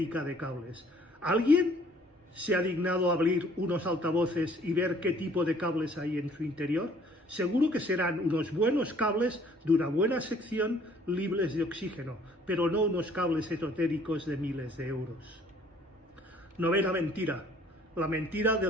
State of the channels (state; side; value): normal; both; correlation 0.58